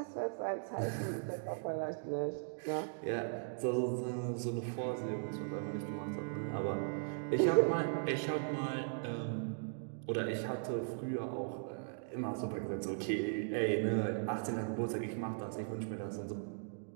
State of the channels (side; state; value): left; silent; digital silence